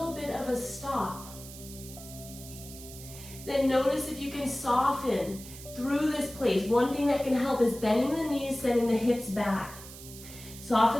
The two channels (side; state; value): right; noise; hiss, 15 dB below the sound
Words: bit of a stop. Then notice if you can soften through this place. One thing that can help is bending the knees, sending the hips back.